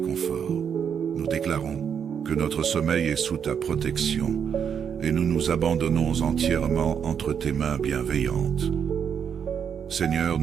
Nous déclarons que notre sommeil est sous ta protection et nous nous abandonnons entièrement entre tes mains bienveillantes. Seigneur,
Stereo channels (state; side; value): quieter; left; 7.6 dB